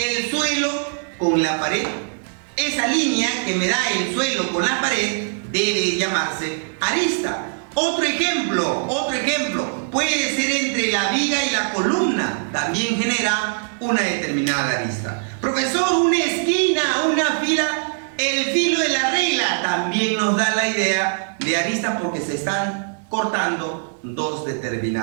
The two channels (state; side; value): silent; left; digital silence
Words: suelo con la pared. Esa línea que me da el suelo con la pared debe llamarse arista. Otro ejemplo puede ser entre la viga y la columna, también genera una determinada arista. Profesor, una esquina, una fila, el filo de la regla también nos da la idea de arista, porque se están cortando dos